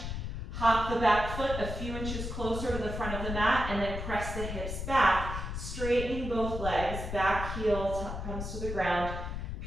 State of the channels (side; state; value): left; noise; rumble, 5 dB below the sound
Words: Hop the back foot a few inches closer to the front of the mat and then press the hips back, straightening both legs. Back heel comes to the ground,